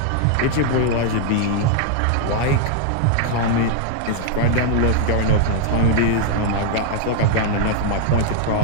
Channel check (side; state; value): both; different; correlation 0.00